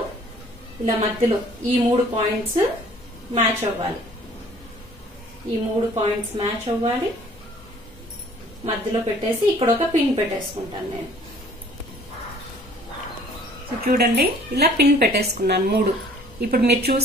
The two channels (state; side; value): normal; both; correlation 0.54